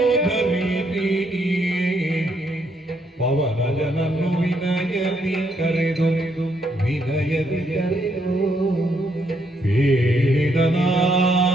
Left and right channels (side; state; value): both; normal; correlation 0.74